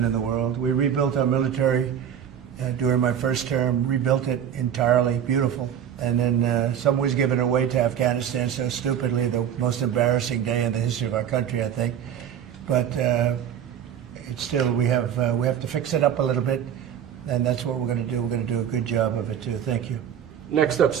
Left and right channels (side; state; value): left; quieter; 9.2 dB